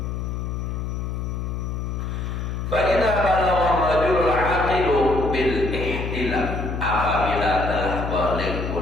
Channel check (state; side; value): noise; left; hum, 4 dB below the sound